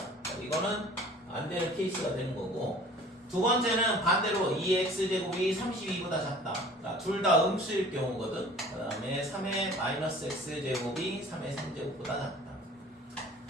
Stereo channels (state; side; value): normal; both; correlation 0.48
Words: 이거는 안 되는 케이스가 되는 거고, 두 번째는 반대로 2x제곱이 32보다 작다. 둘 다 음수일 경우거든. 그 다음에 3의 마이너스 x제곱이 3의 3제곱보다 작다.